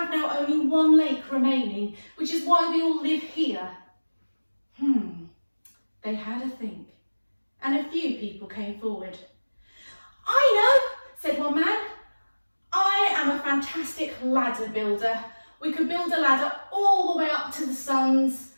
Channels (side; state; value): both; inverted; correlation -1.00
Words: now only 1 lake remaining, which is why we all live here. They had a think and a few people came forward. "I know," said one man. "I am a fantastic ladder builder. We could build a ladder all the way up to the suns